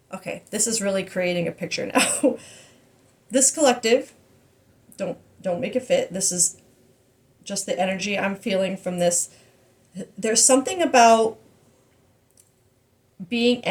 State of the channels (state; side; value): identical; both; correlation 1.00